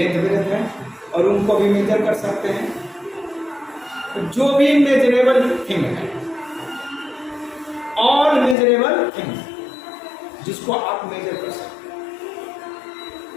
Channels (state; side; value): drops out; right; at 8.6 s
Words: ब्रेथ है, और उनको भी मेजर कर सकते हैं। तो जो भी मेजरेबल थिंग है, ऑल मेजरेबल थिंग्स जिसको आप मेजर कर सकते हैं,